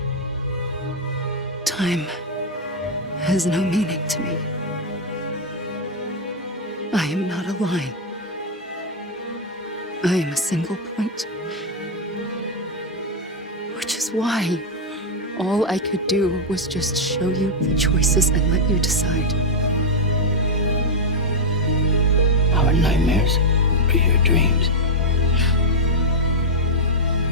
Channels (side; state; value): both; normal; correlation 0.00